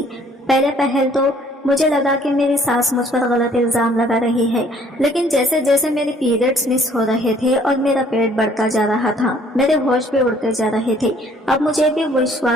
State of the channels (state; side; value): normal; both; correlation 0.59